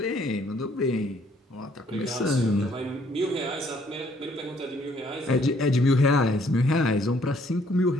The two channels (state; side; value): normal; both; correlation 0.64